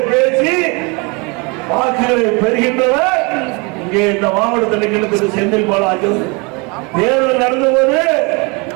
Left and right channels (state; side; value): quieter; left; 29.5 dB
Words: பேசி வாக்குகளை பெறுகின்றவர் இங்கே இந்த மாவட்டத்தில் திரு செந்தில் பாலாஜி. தேர்தல் நடந்தபோது